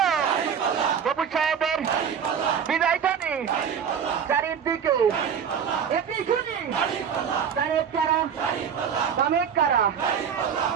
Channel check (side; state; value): left; quieter; 7.5 dB